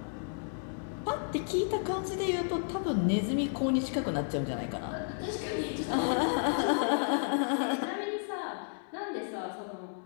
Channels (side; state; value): right; silent; digital silence